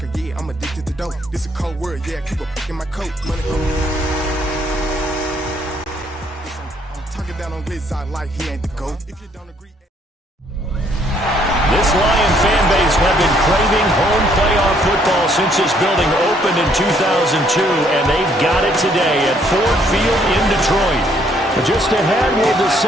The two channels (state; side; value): normal; both; correlation 0.67